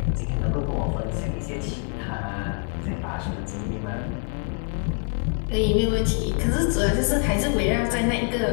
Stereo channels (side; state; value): right; quieter; 37.4 dB